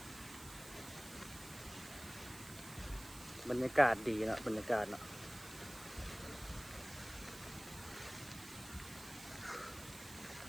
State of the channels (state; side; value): noise; right; hiss, 14 dB below the sound